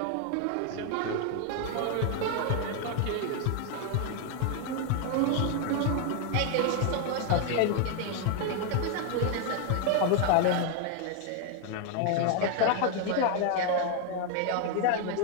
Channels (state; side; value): different; both; correlation 0.00